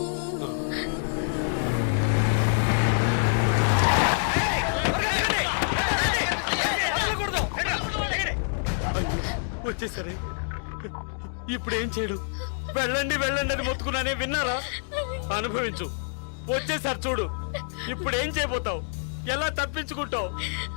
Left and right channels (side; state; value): right; silent; digital silence